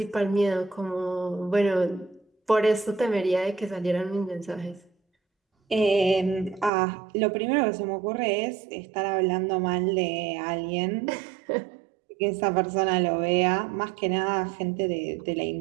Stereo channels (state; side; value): drops out; left; at 6.7 s